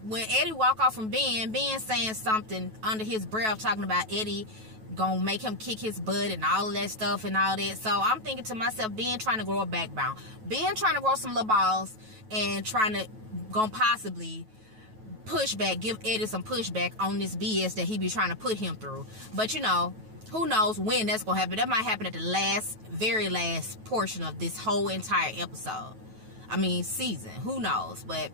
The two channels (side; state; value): left; late; 9.2 ms